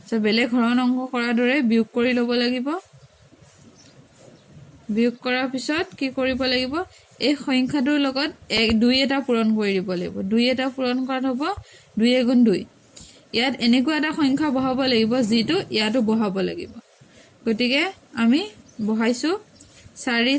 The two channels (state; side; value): identical; both; correlation 1.00